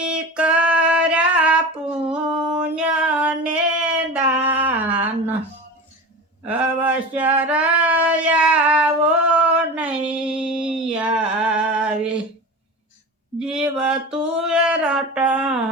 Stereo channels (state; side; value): normal; both; correlation 0.30